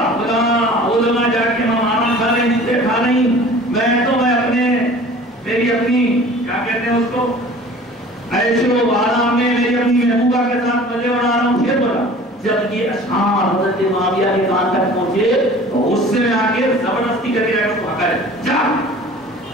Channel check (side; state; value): both; normal; correlation 0.45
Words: وہ لگا جا کے ماما کھا رہی جتنے کھا رہی، میں تو میں اپنے میری اپنی کیا کہتے ہیں اس کو عیش و آرام میں میری اپنی محبوبہ کے ساتھ مزے بنا رہا ہوں، شیر بولا۔ جب یہ اشعار حضرت معاویہ کے کان تک پہنچے تو غصے میں آ کے زبردستی کر کے اس کو ہکا جا،